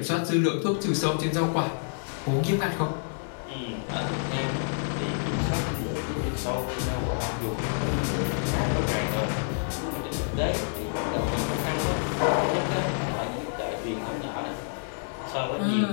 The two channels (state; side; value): silent; right; digital silence